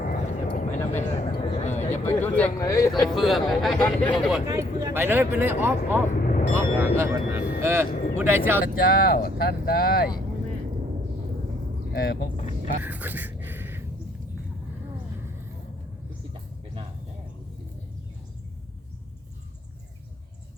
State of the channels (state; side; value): normal; both; correlation 0.66